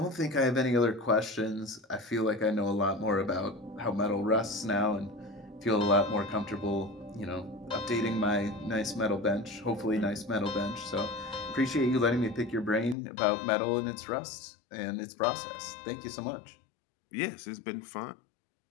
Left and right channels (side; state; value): right; drops out; at 13.0 s